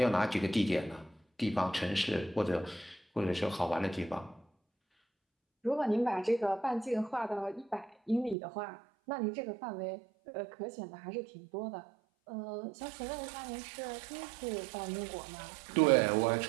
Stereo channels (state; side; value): drops out; left; at 8.3 s